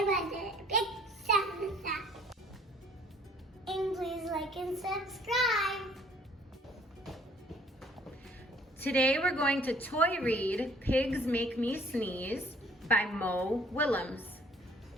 us a big thumbs up. And please like and subscribe. Today we're going to toy read Pigs Make Me Sneeze by Mo Willems.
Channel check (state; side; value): normal; both; correlation 0.57